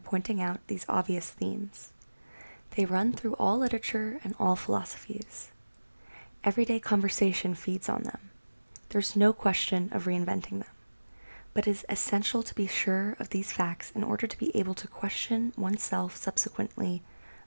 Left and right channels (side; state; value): both; inverted; correlation -1.00